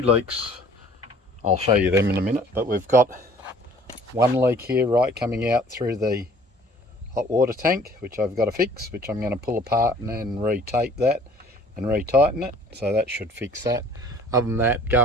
leaks, I'll show you them in a minute, but we've got one leak here right coming out through the hot water tank, which I've got to fix, which I'm going to pull apart and then retape that and retighten it, so that should fix that. Other than that,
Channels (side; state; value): both; normal; correlation 0.53